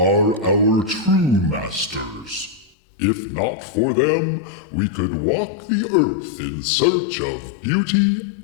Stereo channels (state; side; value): drops out; right; at 2.7 s